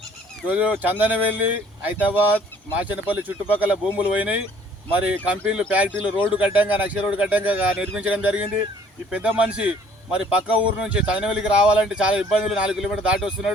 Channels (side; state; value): both; normal; correlation 0.58